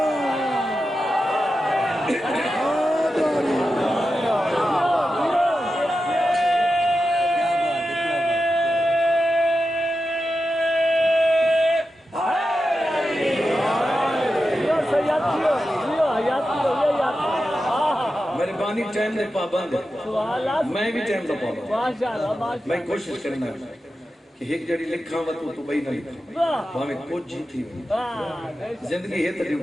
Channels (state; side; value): normal; both; correlation 0.91